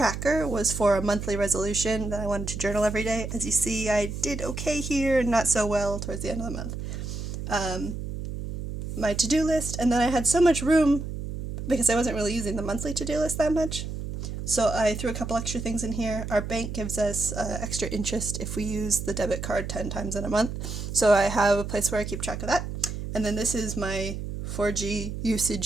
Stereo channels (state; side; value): noise; right; hum, 6 dB below the sound